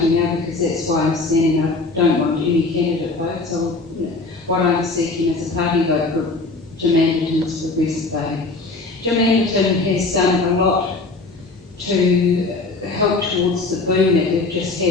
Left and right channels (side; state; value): right; quieter; 3.5 dB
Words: now, because that's why I'm standing. I don't want any candidate votes. So what I'm seeking is a party vote for Jim Anderton's Progressive Party. Jim Anderton has done a lot to help towards the boom that we've just